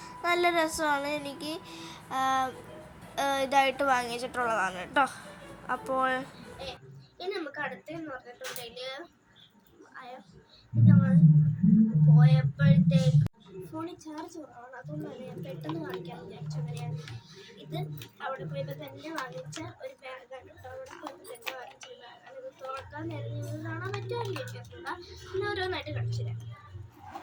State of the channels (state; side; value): identical; both; correlation 1.00